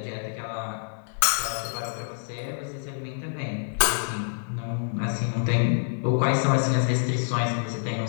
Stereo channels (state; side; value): silent; right; 59 dB below the other